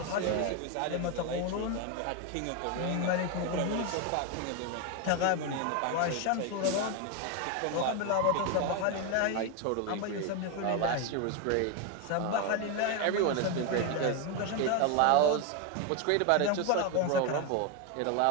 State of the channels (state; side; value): different; both; correlation 0.02